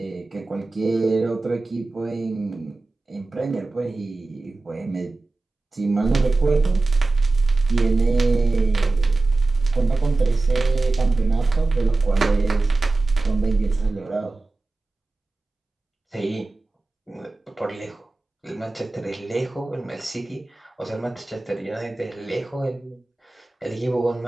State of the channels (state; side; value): quieter; left; 3.3 dB